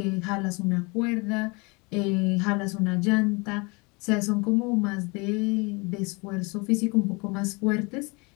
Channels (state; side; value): quieter; right; 28.5 dB